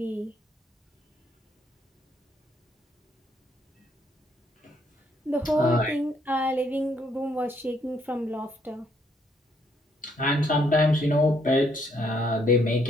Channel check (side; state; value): both; normal; correlation 0.70